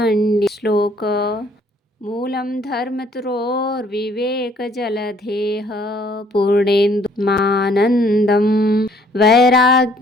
श्लोक। मूलं धर्मतरोर्विवेक जलधेः पूर्णेन्दुमानन्दं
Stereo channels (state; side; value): normal; both; correlation 0.62